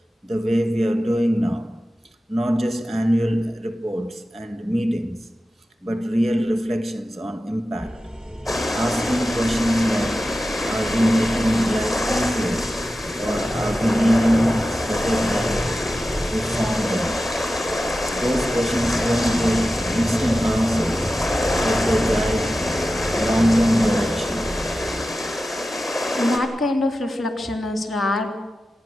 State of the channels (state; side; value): normal; both; correlation 0.93